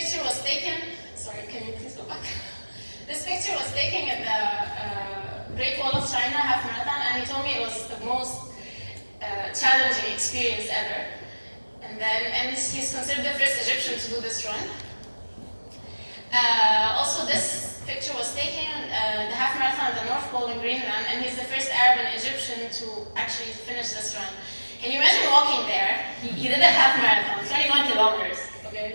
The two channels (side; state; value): both; inverted; correlation -1.00